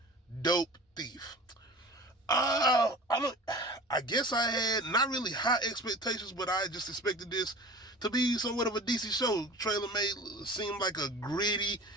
Dope Thief. I don't. I guess I had not really high expectations, but I just expected this to be somewhat of a decent show. Trailer made seem like a gritty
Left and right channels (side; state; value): both; normal; correlation 0.39